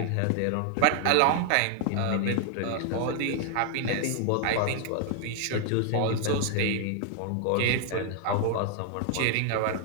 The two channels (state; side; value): different; both; correlation 0.00